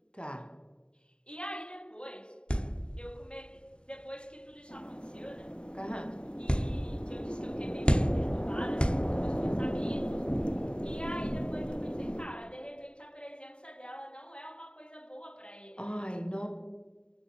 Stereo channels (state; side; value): late; right; 0.051 ms